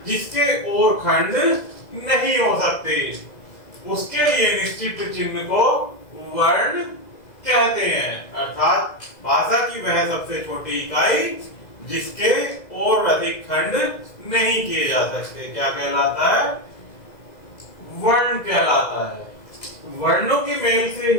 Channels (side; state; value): right; late; 2.0 ms